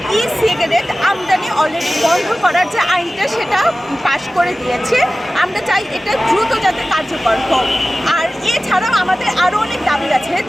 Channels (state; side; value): normal; both; correlation 0.96